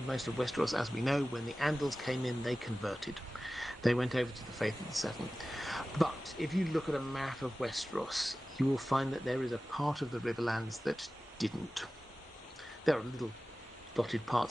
most of Westeros, as we know, when the Andals came in, they converted. They went over to the faith of the Seven. But if you look at a map of Westeros, you will find that there is a part of the Riverlands that didn't. There are little dotted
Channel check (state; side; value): normal; both; correlation 0.96